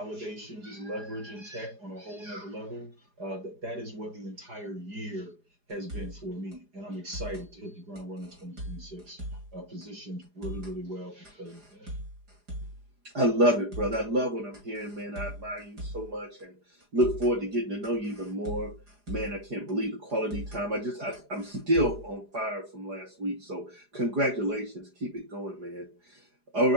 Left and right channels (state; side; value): late; left; 4.9 ms